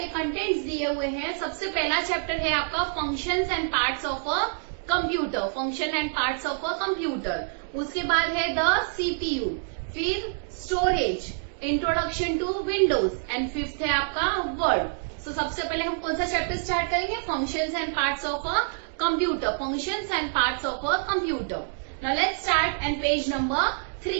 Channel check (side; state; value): left; silent; digital silence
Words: कंटेंट्स दिए हुए हैं. सबसे पहला चैप्टर है आपका functions and parts of a computer. Function and parts of a computer. उसके बाद है द सीपीयू, फिर storage, introduction to Windows and 5th है आपका वर्ड. सो सबसे पहले हम कौन सा चैप्टर स्टार्ट करेंगे? Functions and parts of a computer. Functions and parts of a computer. Now let's start and page number